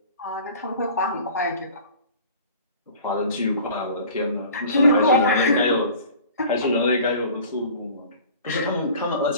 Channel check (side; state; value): both; inverted; correlation -0.44